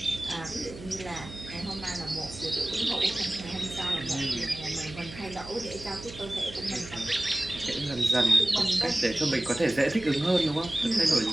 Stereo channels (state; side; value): noise; right; hum, 15 dB below the sound